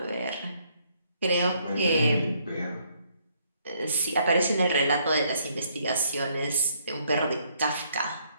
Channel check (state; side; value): inverted; both; correlation -0.69